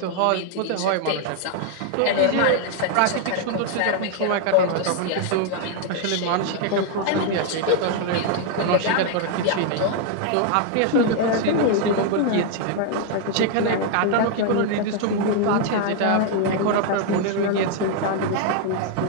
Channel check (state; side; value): different; both; correlation 0.00